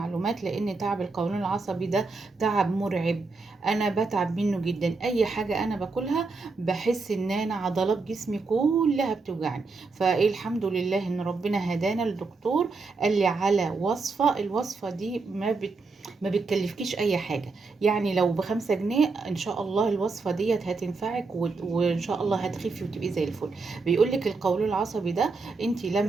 لان تعب القولون العصبي ده تعب مرعب. انا بتعب منه جدا. اي حاجة انا باكلها بحس ان انا عضلات جسمي كلها بتوجعني. فايه الحمد لله ان ربنا هدانا الدكتور قال لي على وصفة. الوصفة دي ما بتكلفكيش اي حاجة. يعني لو ب5 جنيه ان شاء الله الوصفة ديت هتنفعك وان شاء الله هتخفي وتبقي زي الفل. بيقولك القولون العصبي ده انت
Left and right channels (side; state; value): left; quieter; 4.0 dB